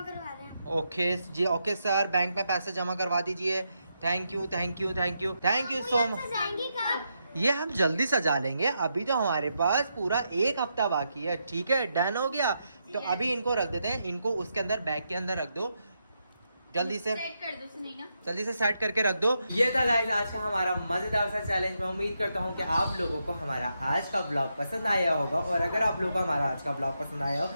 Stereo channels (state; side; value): inverted; both; correlation -0.83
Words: रहे हैं। ओके जी, ओके सर, बैंक में पैसे जमा करवा दीजिए। Thank you so much. ये हम जल्दी सजा लेंगे, अभी तो हमारे पास पूरा 1 हफ्ता बाकी है। ठीक है, डन हो गया। तो अभी इनको रख देते हैं, इनको उसके अंदर बैग के अंदर रख दो, जल्दी से सेट कर दो सुनैना। जल्दी से सेट करके रख दो। ये था गाइस आज का हमारा मजेदार सा चैलेंज। मैं उम्मीद करता हूँ कि आप लोगों को हमारा आज का ब्लॉग पसंद आया होगा और अगर आप लोगों को हमारा आज का ब्लॉग पसंद आया हो